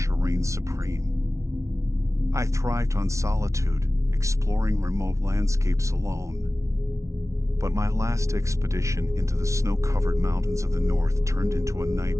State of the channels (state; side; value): late; left; 0.14 ms